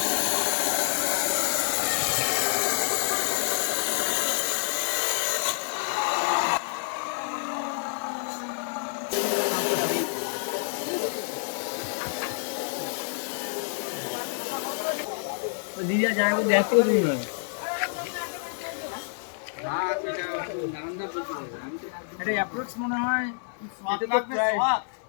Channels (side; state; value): right; silent; digital silence